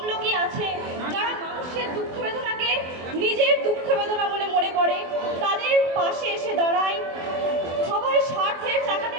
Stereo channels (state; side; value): late; left; 24 ms